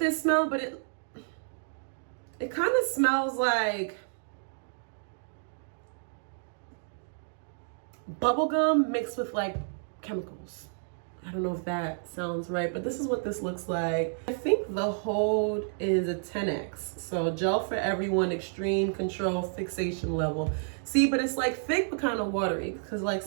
smell, but it kind of smells like bubblegum mixed with like chemicals. I don't know if that sounds right, but this is what this looks like. I think the hold is a 10x. So gel for everyone, extreme control fixation level. See, but it's like thick but kind of watery because like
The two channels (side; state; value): left; silent; digital silence